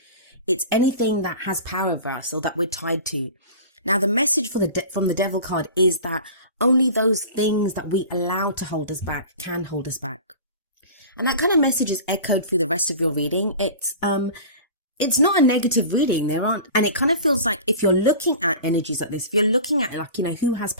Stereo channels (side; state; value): both; inverted; correlation -0.37